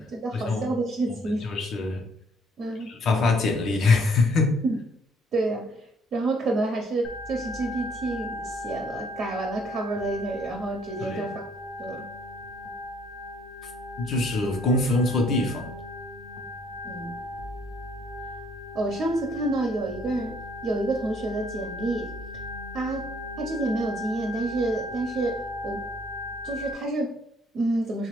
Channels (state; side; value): normal; both; correlation 0.64